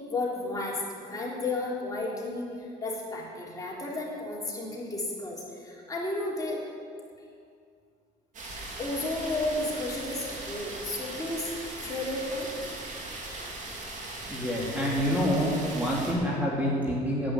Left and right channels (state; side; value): normal; both; correlation 0.46